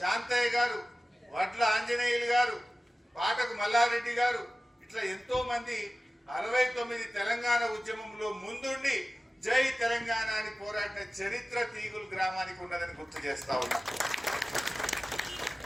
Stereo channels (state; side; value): normal; both; correlation 0.96